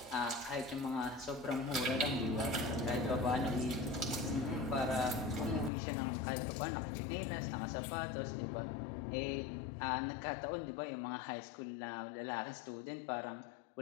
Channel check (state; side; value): drops out; right; at 5.7 s